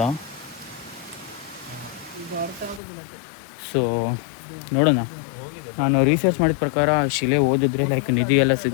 ಸೊ ನೋಡೋಣ. ನಾನು ರಿಸರ್ಚ್ ಮಾಡಿದ ಪ್ರಕಾರ ಶಿಲೆ ಓದಿದ್ರೆ ಲೈಕ್ ನಿಧಿ ಎಲ್ಲ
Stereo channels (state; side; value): drops out; right; at 2.8 s